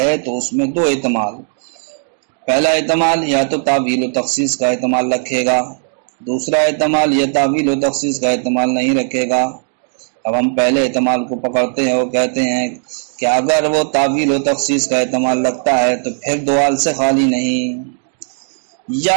تو اس میں 2 احتمال، پہلا احتمال یا تو تعویل و تخصیص کا احتمال رکھے گا، دوسرا احتمال یا تعویل و تخصیص کا احتمال نہیں رکھے گا۔ اب ہم پہلے احتمال کو پکڑتے ہیں اور کہتے ہیں کہ اگر وہ تعویل و تخصیص کا احتمال رکھتا ہے تو پھر 2 حال سے خالی نہیں،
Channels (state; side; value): silent; left; digital silence